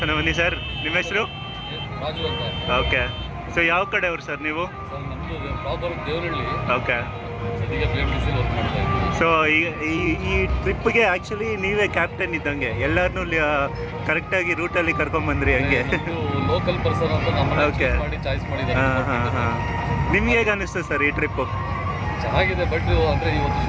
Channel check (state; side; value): identical; both; correlation 1.00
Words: ಬನ್ನಿ. ಸರ್ ನಿಮ್ಮ ಹೆಸರು? ರಾಜು ಅಂತ. ಓಕೆ. ಸೊ ಯಾವ ಕಡೆಯವರು ಸರ್ ನೀವು? ಓಕೆ. ಸೊ ಈ ಟ್ರಿಪ್ಗೆ ಆ್ಯಕ್ಚುಲಿ ನೀವೇ ಕ್ಯಾಪ್ಟನ್ ಇದ್ದಂಗೆ, ಎಲ್ಲರನ್ನೂ ಕರೆಕ್ಟಾಗಿ ರೂಟಲ್ಲಿ ಕರ್ಕೊಂಬಂದ್ರಿ ಹಂಗೆ. ಲೋಕಲ್ ಪರ್ಸನ್ ಅಂತ ಓಕೆ. ಹಾಂ ಹಾಂ ಹಾಂ. ನಿಮ್ಗೆ ಹೇಗೆ ಅನ್ನಿಸ್ತು ಸರ್ ಈ ಟ್ರಿಪ್ಪು? ಚೆನ್ನಾಗಿದೆ, ಬಟ್ ಅಂದರೆ ಇವತ್ತು